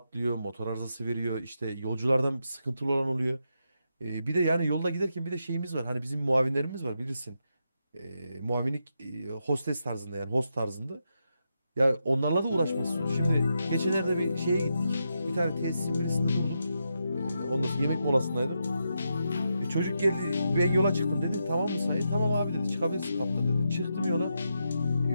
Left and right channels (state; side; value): inverted; both; correlation -0.84